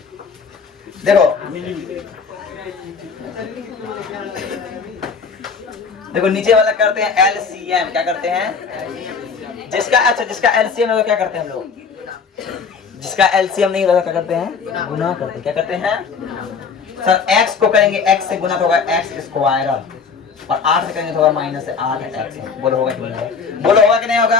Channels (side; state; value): right; quieter; 5.5 dB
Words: देखो नीचे वाला करते हैं LCM। क्या करते हैं? जिसका LCM है क्या करते हैं हम लोग? जिसका LCM नहीं होता क्या करते हैं? गुना करते हैं। क्या करते हैं सर? x को करेंगे x से गुना तो होगा x स्क्वायर, और 8 से करेंगे तो होगा माइनस 8x। बोलो होगा कि नहीं होगा? बोलो होगा कि नहीं